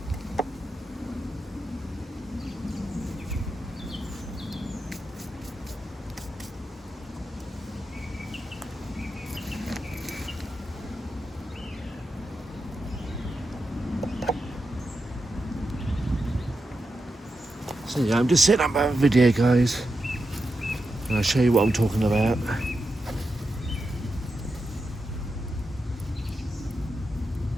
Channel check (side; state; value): both; normal; correlation 0.88